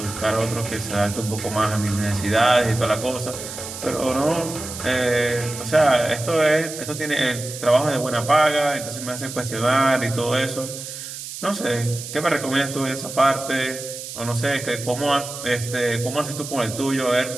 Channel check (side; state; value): right; noise; hiss, 10 dB below the sound